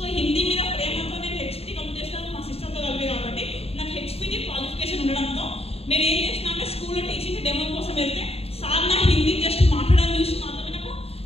హిందీ మీద ప్రేమతో నేను హెచ్పిటి కంప్లీట్ చేస్తాను మా సిస్టర్తో కలిపి. కాబట్టి నాకు హెచ్పిటి క్వాలిఫికేషన్ ఉండడంతో నేను ఏం చేసిన అంటే స్కూల్లో టీచింగ్ డెమో కోసం వెళ్తే సార్ నా హిందీ జస్ట్ మాట్లాడడం చూసి మాత్రమే నాకు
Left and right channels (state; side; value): late; right; 0.29 ms